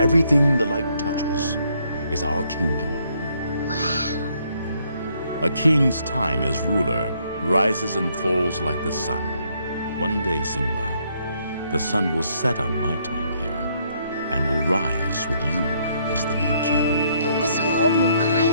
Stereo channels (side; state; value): both; inverted; correlation -0.70